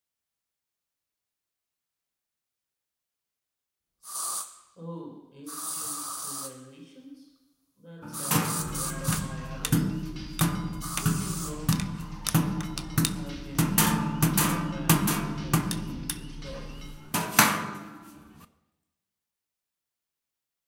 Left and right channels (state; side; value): identical; both; correlation 1.00